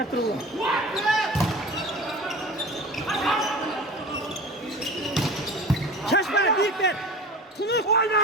türlü. Şaşma büyük ver. Tunuk. Oyna.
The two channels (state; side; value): normal; both; correlation 0.37